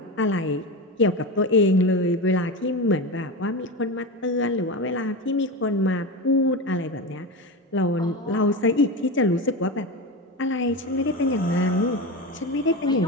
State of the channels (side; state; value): both; normal; correlation 0.22